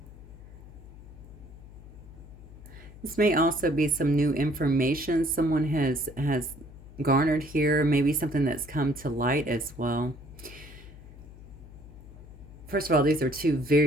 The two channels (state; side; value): noise; left; hum, 17 dB below the sound